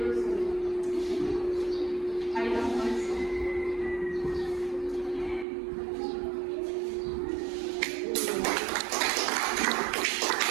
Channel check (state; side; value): drops out; left; at 5.5 s